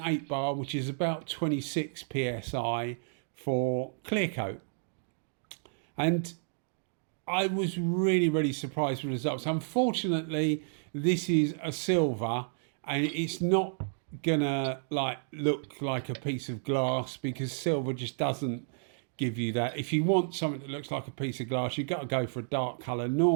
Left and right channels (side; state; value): left; silent; digital silence